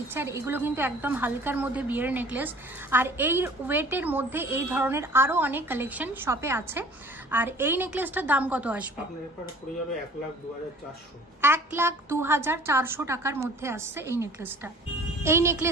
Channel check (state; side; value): normal; both; correlation 0.49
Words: আর এগুলো কিন্তু একদম হালকার মধ্যে বিয়ের নেকলেস। আর এই ওয়েটের মধ্যে এই ধরনের আরও অনেক কালেকশন শপে আছে। আর এই নেকলেসটার দাম কত আসবে? 1,02,400 টাকার মধ্যে আসছে এই নেকলেসটা। এই